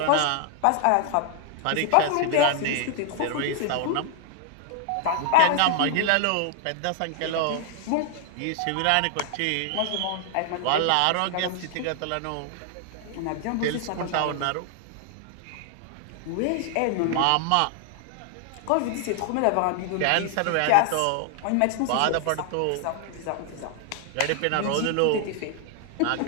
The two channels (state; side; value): different; both; correlation 0.00